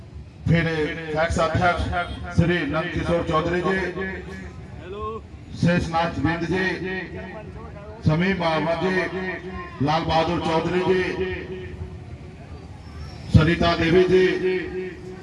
फिर एक्स अध्यक्ष श्री नंद किशोर चौधरी जी, शेषनाथ बिंद जी, समीम अहमद जी, लाल बहादुर चौधरी जी, सरिता देवी जी,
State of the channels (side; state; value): both; identical; correlation 1.00